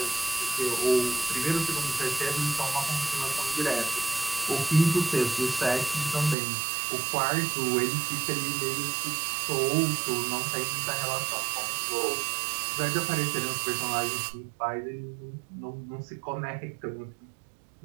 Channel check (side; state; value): left; drops out; at 6.4 s